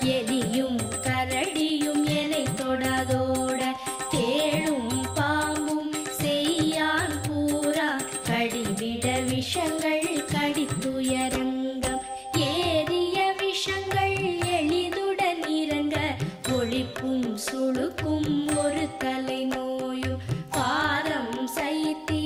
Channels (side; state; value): both; identical; correlation 1.00